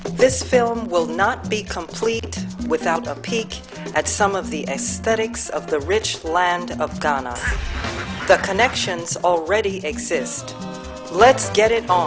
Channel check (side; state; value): both; identical; correlation 1.00